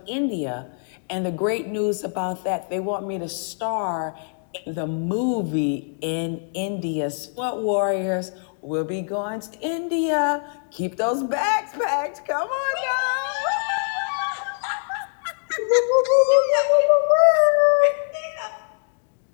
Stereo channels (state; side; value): silent; right; digital silence